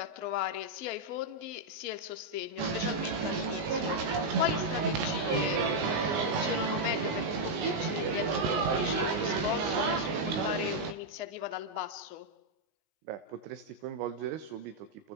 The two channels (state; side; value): late; left; 19 ms